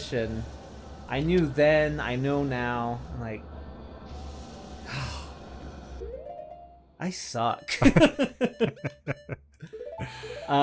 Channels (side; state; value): both; identical; correlation 1.00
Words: I knew then, I know now. I'm like, I suck.